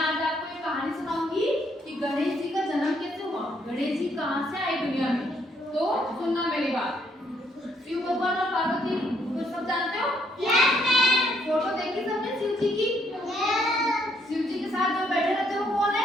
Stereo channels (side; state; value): both; normal; correlation 0.71